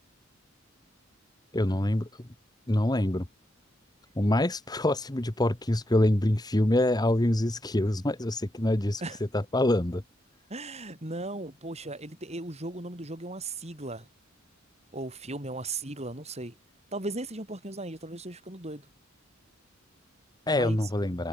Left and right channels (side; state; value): both; normal; correlation 0.81